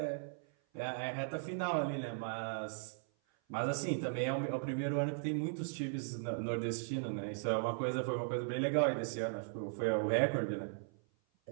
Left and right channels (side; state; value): left; silent; 53 dB below the other